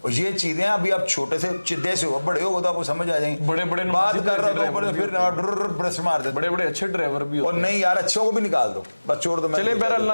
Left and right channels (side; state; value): both; inverted; correlation -1.00